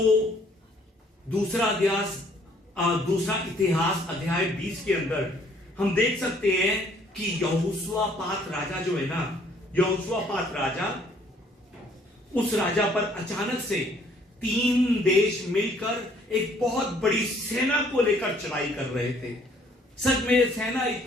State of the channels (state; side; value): normal; both; correlation 0.62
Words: दूसरा इतिहास अध्याय 20 के अंदर हम देख सकते हैं कि यहोशापात राजा जो है ना, यहोशापात राजा, उस राजा पर अचानक से 3 देश मिलकर एक बहुत बड़ी सेना को लेकर चढ़ाई कर रहे थे। सच में सेना